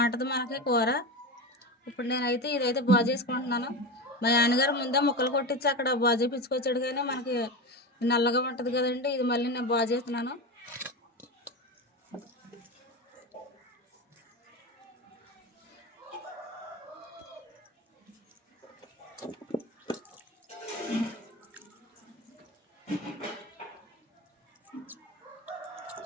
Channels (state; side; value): normal; both; correlation 0.22